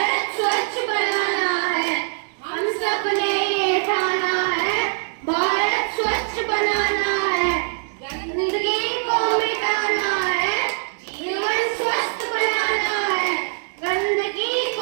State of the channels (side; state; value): left; silent; digital silence